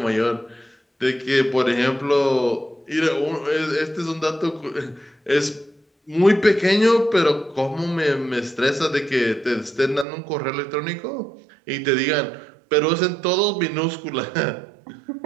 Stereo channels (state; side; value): drops out; left; at 10.1 s